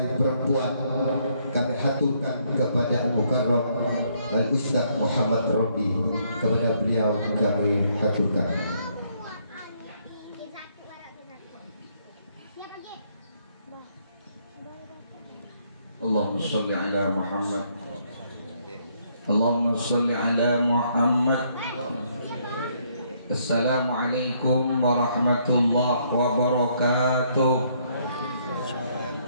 perempuan kami haturkan kepada Al-Mukarram Al-Ustaz Muhammad Robi. Kepada beliau kami haturkan. Allahumma sholli ala Muhammad. Allahumma sholli ala Muhammad. Assalamualaikum warahmatullahi wabarakatuh.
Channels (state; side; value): inverted; both; correlation -0.70